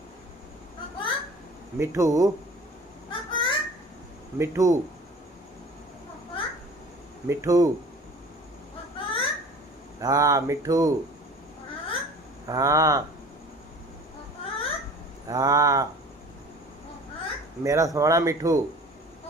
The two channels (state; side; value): normal; both; correlation 0.44